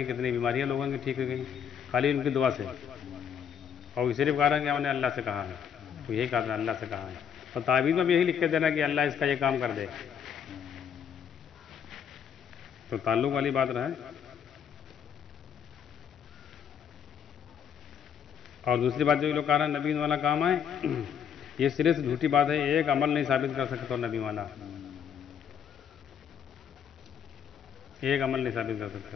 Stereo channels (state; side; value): quieter; right; 8.0 dB